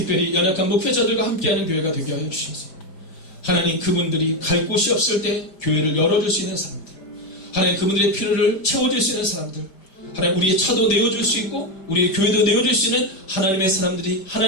연약한 목회자들과 함께하는 교회가 되게 하여 주셔서 하나님 그분들이 갈 곳이 없을 때 교회를 열어줄 수 있는 사람들 하나님 그분들의 필요를 채워줄 수 있는 사람들 하나님 우리의 차도 내어줄 수 있고 우리의 교회도 내어줄 수 있는 하나님의 사람들이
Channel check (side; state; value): right; late; 5.1 ms